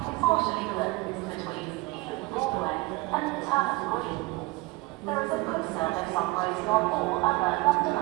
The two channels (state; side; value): quieter; left; 21.8 dB